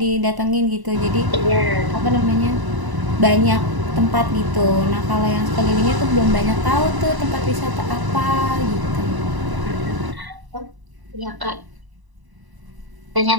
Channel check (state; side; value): late; left; 1.0 ms